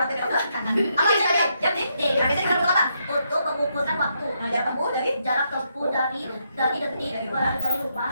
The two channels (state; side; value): inverted; both; correlation -0.78